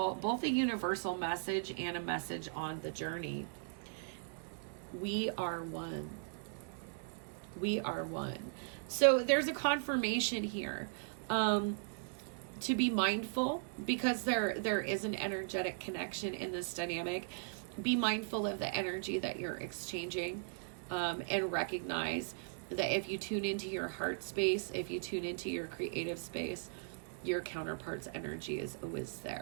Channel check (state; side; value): silent; left; digital silence